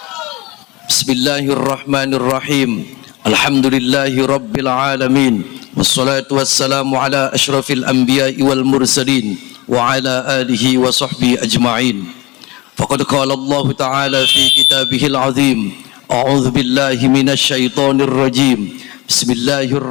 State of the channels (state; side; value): quieter; right; 22.6 dB